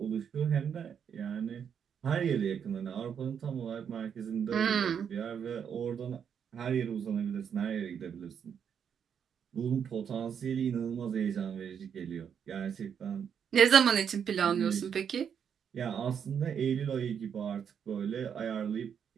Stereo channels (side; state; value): left; quieter; 7.7 dB